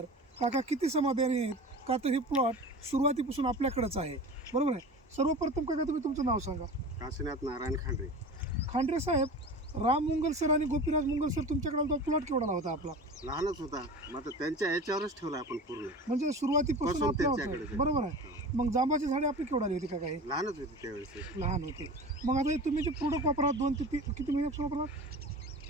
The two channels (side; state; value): both; normal; correlation 0.34